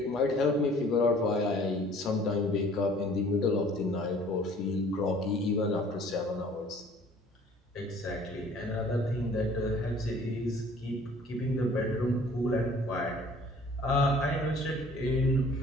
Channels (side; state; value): both; normal; correlation 0.53